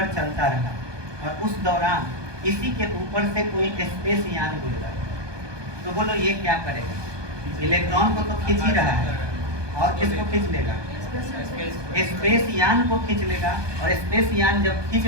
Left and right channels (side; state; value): left; late; 1.2 ms